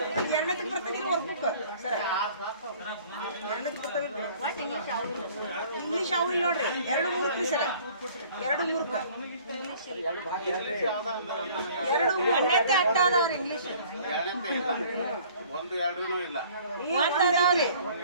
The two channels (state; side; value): inverted; both; correlation -0.53